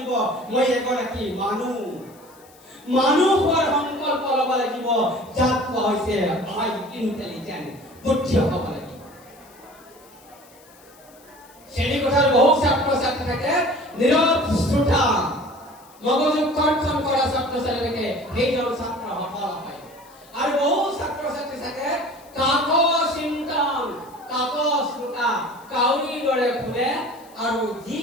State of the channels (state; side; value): noise; left; hiss, 26 dB below the sound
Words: মই এগৰাকী মানুহ হোৱাৰ সংকল্প ল'ব লাগিব, যাক কোৱা হৈছে আই ইণ্টেলিজেণ্ট, বুদ্ধি হ'ব লাগিব। শ্ৰেণীকোঠাৰ বহু ছাত্ৰ ছাত্ৰী থাকে নীৰৱ শ্ৰোতা, মগজু কৰ্ষণ কৰা ছাত্ৰ ছাত্ৰী থাকে, সেইজন ছাত্ৰ সফল হয়। আৰু বহু ছাত্ৰ ছাত্ৰী থাকে কাকজ চিন্তন, কাকজ শ্ৰোতা, কাউৰীৰ দৰে শুনে আৰু যি